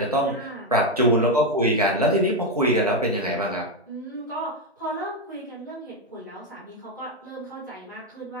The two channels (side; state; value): both; normal; correlation 0.07